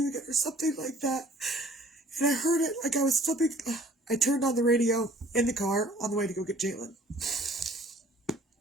again, or something like that. And I heard it like I was flipping. I turned on the radio in the car on the way to go get Jalen.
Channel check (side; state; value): both; normal; correlation 0.54